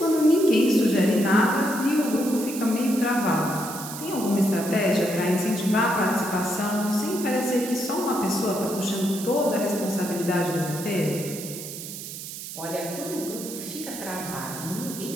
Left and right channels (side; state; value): right; noise; hiss, 10 dB below the sound